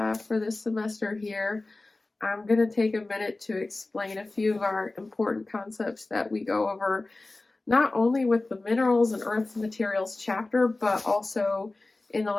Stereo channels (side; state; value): right; quieter; 3.1 dB